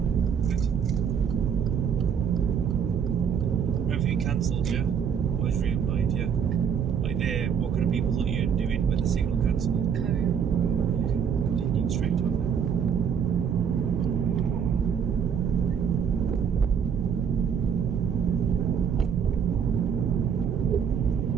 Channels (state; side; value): quieter; left; 7.4 dB